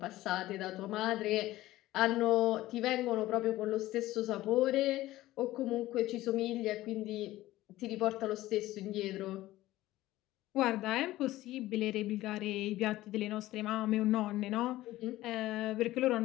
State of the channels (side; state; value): right; quieter; 16.2 dB